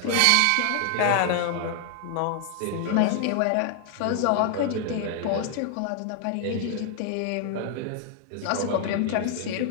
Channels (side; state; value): both; different; correlation 0.00